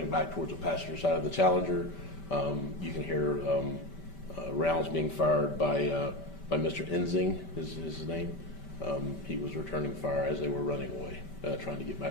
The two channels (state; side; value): late; right; 5.1 ms